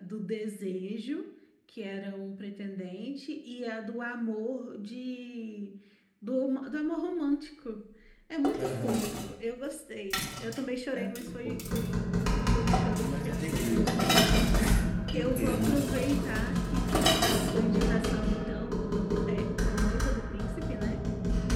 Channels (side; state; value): both; identical; correlation 1.00